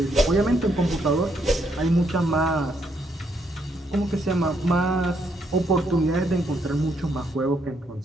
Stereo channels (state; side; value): normal; both; correlation 0.74